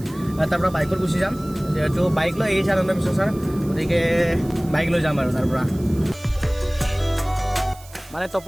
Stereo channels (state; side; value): noise; right; hiss, 22 dB below the sound